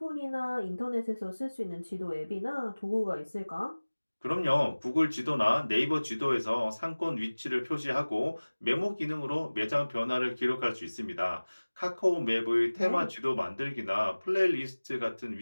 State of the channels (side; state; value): both; inverted; correlation -1.00